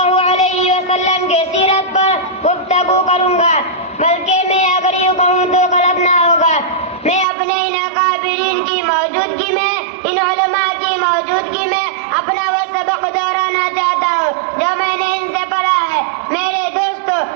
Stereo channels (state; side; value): drops out; left; at 7.2 s